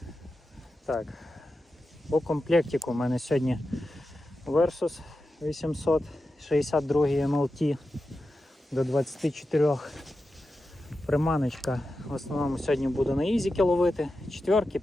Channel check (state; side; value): normal; both; correlation 0.91